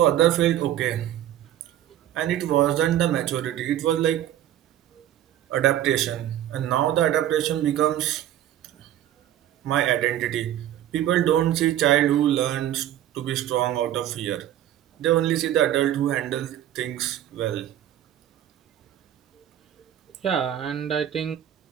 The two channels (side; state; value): left; quieter; 11.9 dB